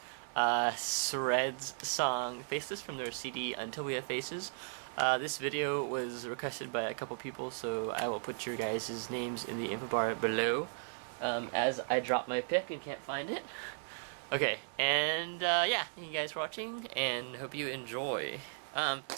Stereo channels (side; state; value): left; silent; digital silence